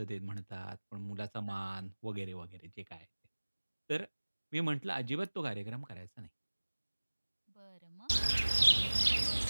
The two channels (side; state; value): both; inverted; correlation -1.00